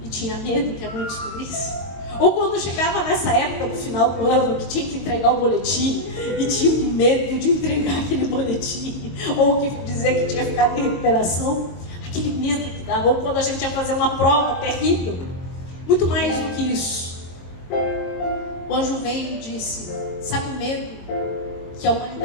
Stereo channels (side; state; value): right; late; 23 ms